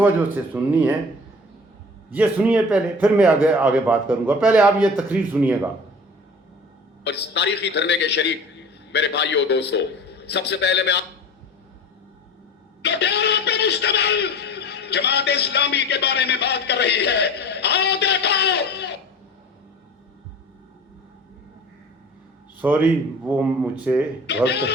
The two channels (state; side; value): normal; both; correlation 0.41